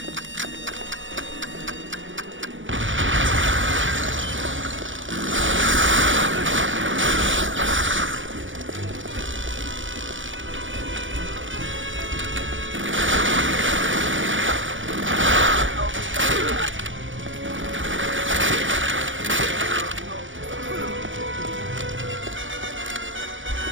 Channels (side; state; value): left; late; 0.56 ms